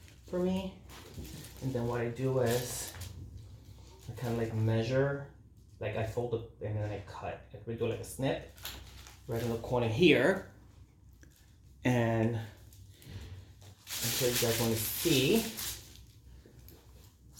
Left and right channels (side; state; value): both; identical; correlation 1.00